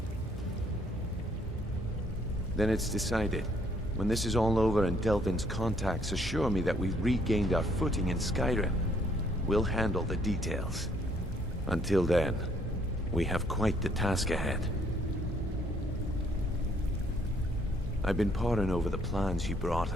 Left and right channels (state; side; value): normal; both; correlation 0.66